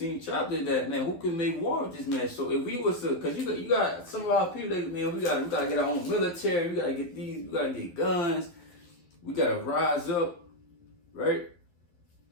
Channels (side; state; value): right; late; 12 ms